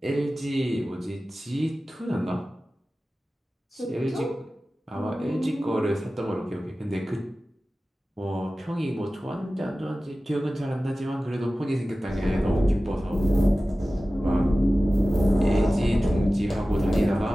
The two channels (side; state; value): both; normal; correlation 0.96